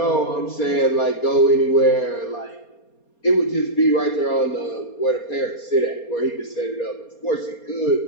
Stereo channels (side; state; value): right; late; 4.3 ms